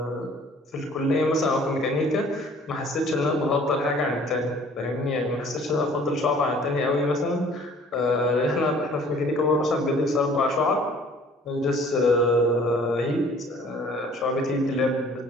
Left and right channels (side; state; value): both; normal; correlation 0.53